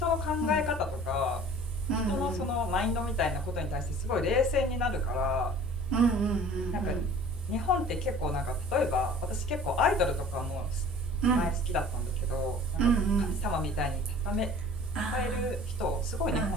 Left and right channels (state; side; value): normal; both; correlation 0.46